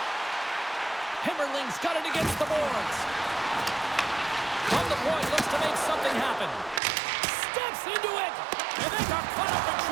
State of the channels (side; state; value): left; drops out; at 6.8 s